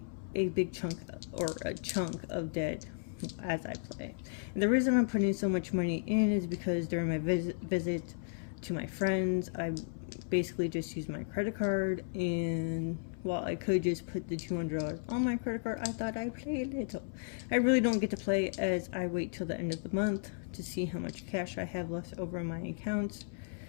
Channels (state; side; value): silent; right; 55 dB below the other